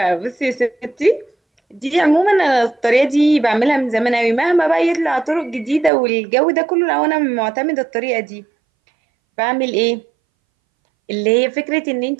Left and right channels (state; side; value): drops out; left; at 5.9 s